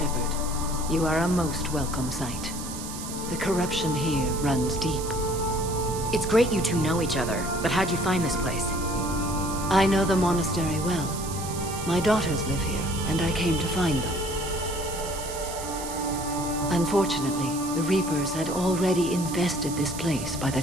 You are a most welcome sight. The corruption here runs deep. It's great you two know each other, but how'd you find this place? I know the monastery well. My daughters live here, and I came to find them. Unfortunately, the Reapers had already infested this place by the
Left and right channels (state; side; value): noise; right; hiss, 10 dB below the sound